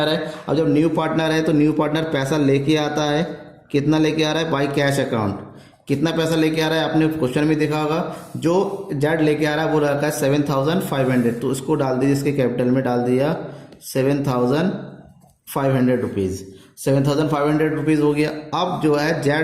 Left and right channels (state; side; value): identical; both; correlation 1.00